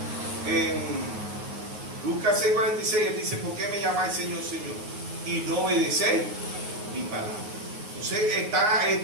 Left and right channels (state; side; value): late; left; 9.5 ms